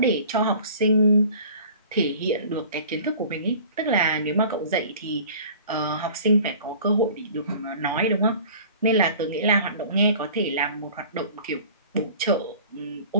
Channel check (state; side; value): inverted; both; correlation -0.46